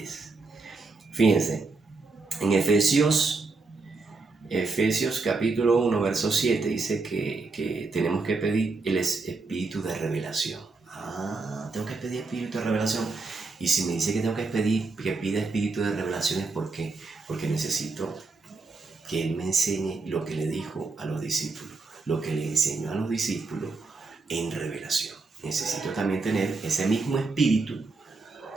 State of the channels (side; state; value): left; quieter; 3.9 dB